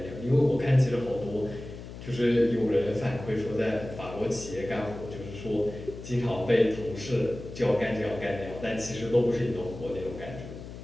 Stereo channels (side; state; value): left; noise; hum, 12 dB below the sound